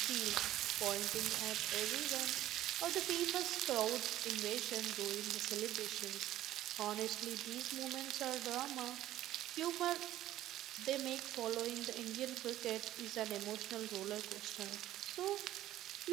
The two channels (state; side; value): quieter; left; 13.9 dB